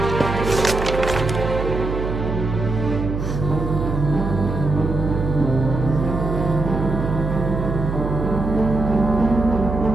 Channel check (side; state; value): right; noise; hum, 4 dB below the sound